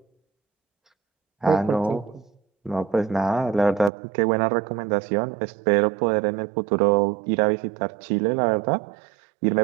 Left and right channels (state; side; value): drops out; left; at 3.9 s